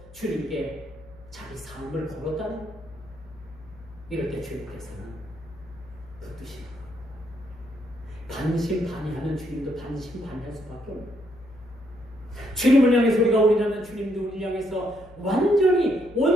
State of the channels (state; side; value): noise; left; hum, 21 dB below the sound